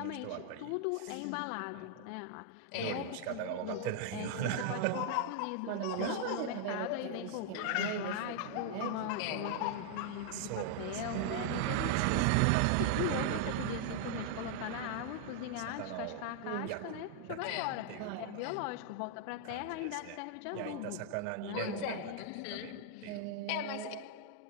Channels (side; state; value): both; different; correlation 0.00